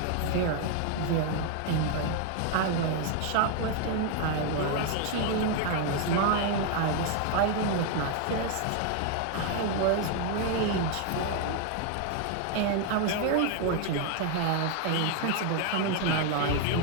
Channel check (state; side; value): different; both; correlation 0.00